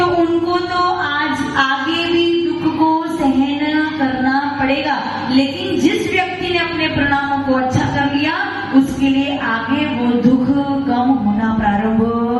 उनको तो आज आगे भी दुख को सहन करना पड़ेगा। लेकिन जिस व्यक्ति ने अपने परिणामों को अच्छा कर लिया, उसके लिए आगे वो दुख कम होना प्रारंभ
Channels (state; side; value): identical; both; correlation 1.00